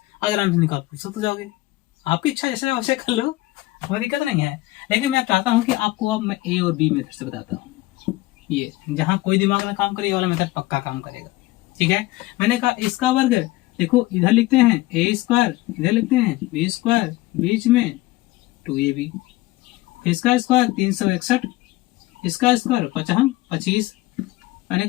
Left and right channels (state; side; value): quieter; right; 18.6 dB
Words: अगर आराम से निकाल सकते हो जाओगे। आपकी इच्छा जैसे वैसे कर लो, कोई दिक्कत नहीं है। लेकिन मैं चाहता हूँ कि आपको अब मैं ए और बी मेथड से बताता हूँ। ये जहाँ कोई दिमाग ना काम करे, ये वाला मेथड पक्का काम करेगा। ठीक है, मैंने कहा इसका वर्ग, देखो इधर लिखते हैं ए स्क्वायर, इधर लिखते हैं बी स्क्वायर, बीच में 2ab, इसका स्क्वायर 361, इसका स्क्वायर 25, मैंने